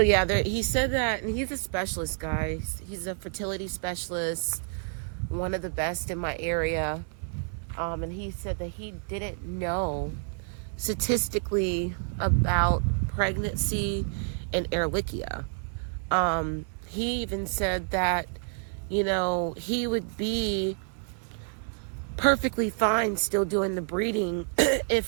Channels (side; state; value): left; silent; 59 dB below the other